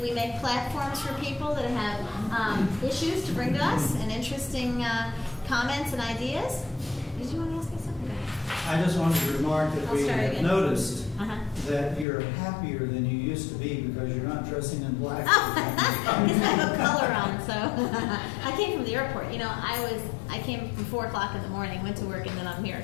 make platforms for people that have issues to bring to us and interesting comments and ideas. Did you want to ask me something? I just wanted to remark that we have noticed that you're happier than you used to be because you're not dressing in black. Because I have a color on, so I came from the airport. You know, I came from 4 o'clock in the morning, went to work, and then I'm here.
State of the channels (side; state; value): right; drops out; at 12.1 s